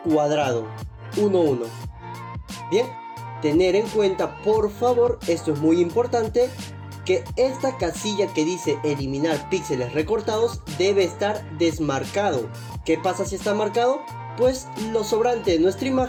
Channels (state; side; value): identical; both; correlation 1.00